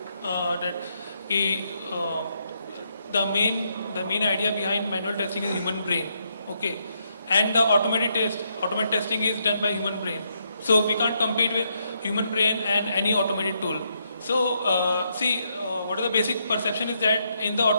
the main idea behind manual testing is human brain, okay, and the automated testing is done by human brain. So we can't compete with human brain and any automated tool. So what is the basic perception is that in the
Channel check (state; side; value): inverted; both; correlation -0.77